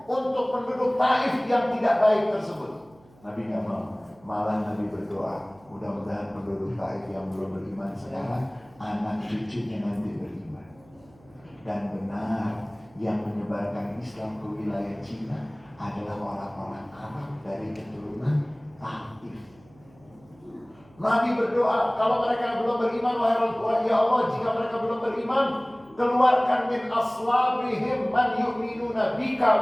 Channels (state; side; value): noise; right; hum, 28 dB below the sound